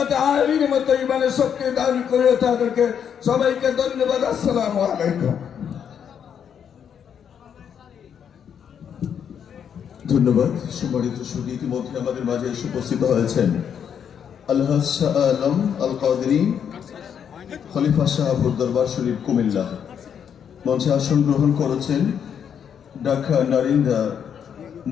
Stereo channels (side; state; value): right; quieter; 8.1 dB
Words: আলীর মতো ইমানের শক্তি দান করিও তাদেরকে। সবাইকে ধন্যবাদ। আসসালামু আলাইকুম। ধন্যবাদ। সম্মানিত সুধী, ইতিমধ্যে আমাদের মাঝে এসে উপস্থিত হয়েছেন আলহাজ শাহ আলম আল কাদেরী, খলিফা শাহপুর দরবার শরীফ, কুমিল্লা। মঞ্চে আসন গ্রহণ করেছেন ঢাকা নারিন্দা